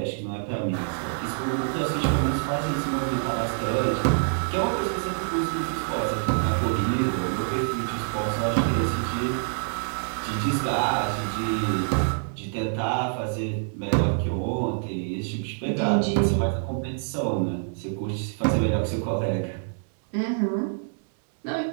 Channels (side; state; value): left; silent; digital silence